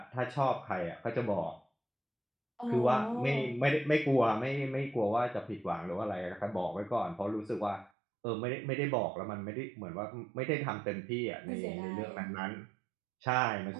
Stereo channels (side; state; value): left; drops out; at 7.9 s